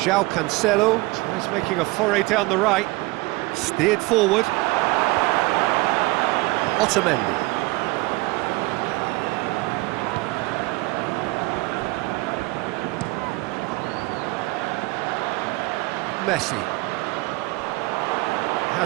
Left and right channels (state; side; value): quieter; left; 22.9 dB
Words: Cancelo tries making a foray down the right, steered forward. Otamendi. Messi.